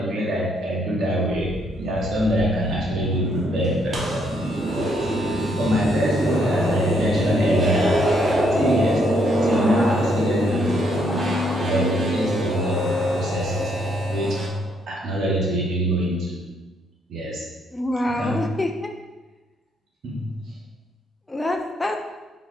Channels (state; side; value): normal; both; correlation 0.72